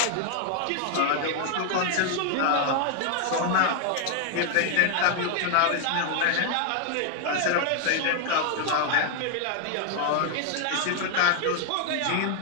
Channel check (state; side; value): different; both; correlation 0.00